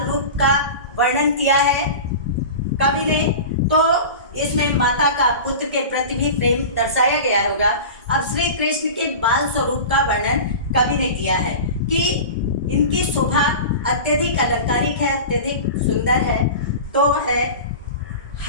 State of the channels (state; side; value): inverted; both; correlation -0.32